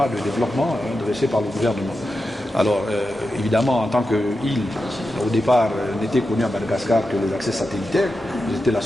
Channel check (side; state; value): both; normal; correlation 0.90